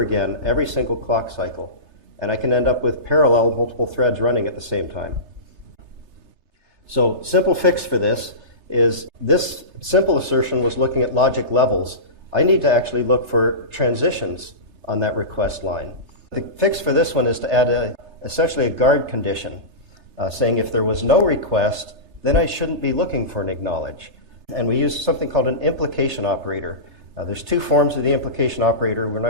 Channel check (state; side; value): late; left; 3.3 ms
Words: again every single clock cycle, and I can end up with parallel multiple threads running at the same time. So simple fix for this is this simple assertion was looking at logic levels. I need to actually look for transitions on that request line. The fix for this one is to add essentially a guard condition, saying if there was no request, then I shouldn't be looking for an acknowledge. And we use something called an implication operator. There's 2 forms of the implication operator. We're